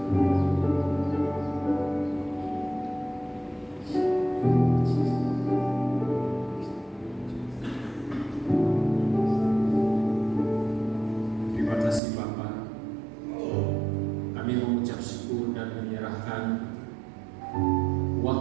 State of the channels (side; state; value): left; drops out; at 12.0 s